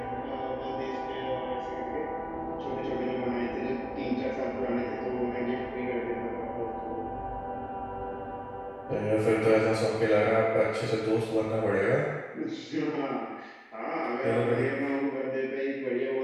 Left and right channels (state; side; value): identical; both; correlation 1.00